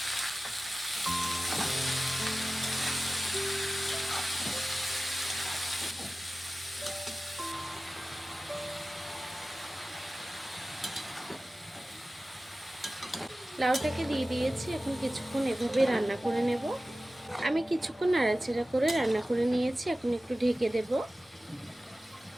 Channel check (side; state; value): both; normal; correlation 0.96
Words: লাউটাকে দিয়ে দিয়েছি, এখন কিছুক্ষণ এভাবে রান্না করে নেব। আমি কিছুক্ষণ নাড়াচাড়া করে রান্না করে নিয়েছি, এখন একটু ঢেকে দেব।